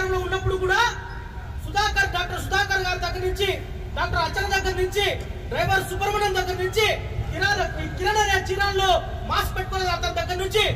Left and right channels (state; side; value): identical; both; correlation 1.00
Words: ఉన్నప్పుడు కూడా డాక్టర్ సుధాకర్ గారి దగ్గర నుంచి, డాక్టర్ అర్చన దగ్గర నుంచి, డ్రైవర్ సుబ్రహ్మణ్యం దగ్గర నుంచి, కిరణ్ అనే చీరాల్లో మాస్క్ పెట్టుకునే అతని దగ్గర నుంచి